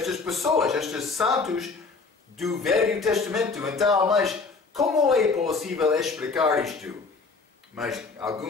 pessoas, estes santos do Velho Testamento. Então, mas como é possível explicar isto? Mas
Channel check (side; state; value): right; quieter; 4.3 dB